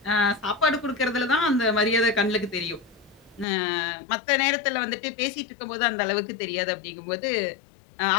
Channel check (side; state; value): right; drops out; at 3.5 s